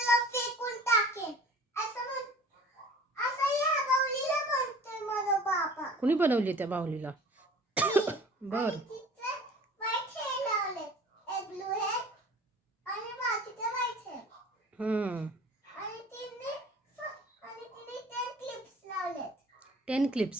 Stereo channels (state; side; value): normal; both; correlation 0.45